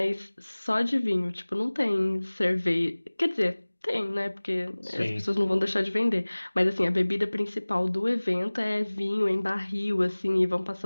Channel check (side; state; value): both; inverted; correlation -1.00